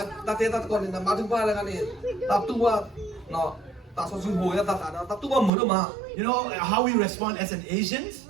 Ta thế ta còn là ba thứ ba là cái này. Ta tu qua nó ta so sinh hồi ta tu qua mới được mà. You know how we respond as an Asians?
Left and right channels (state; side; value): drops out; left; at 5.5 s